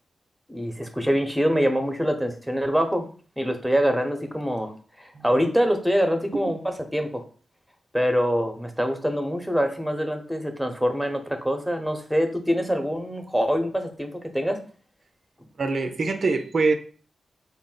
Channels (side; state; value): both; normal; correlation 0.95